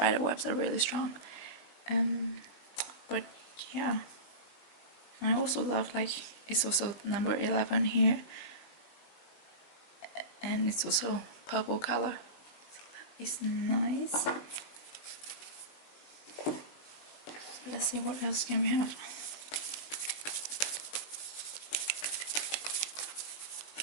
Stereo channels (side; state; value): right; late; 19 ms